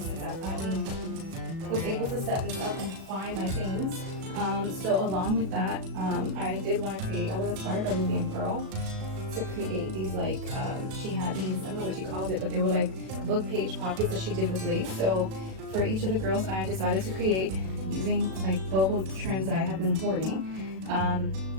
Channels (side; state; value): left; late; 37 ms